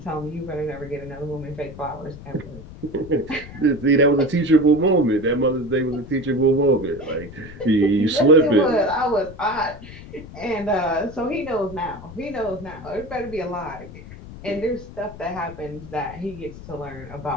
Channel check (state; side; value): noise; left; rumble, 15 dB below the sound